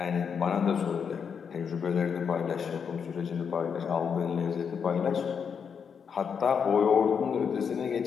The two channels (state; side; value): quieter; right; 6.7 dB